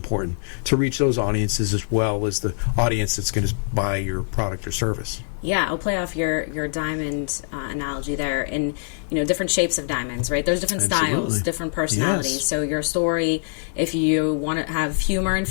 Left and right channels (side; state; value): right; silent; 58 dB below the other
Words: to reach those audiences as well as the audience that's going to buy your product or service. Yeah, I'll play off your diamond analogy there. And, different shapes of diamonds, right? There's different styles, different personalities. Yes. So your story, if you want to have humor